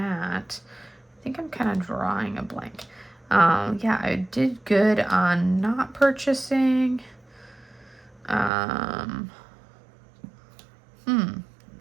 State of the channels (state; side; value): drops out; left; at 8.5 s